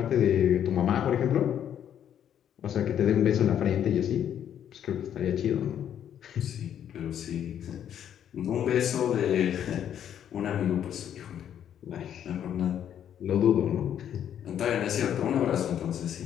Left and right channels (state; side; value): quieter; right; 9.7 dB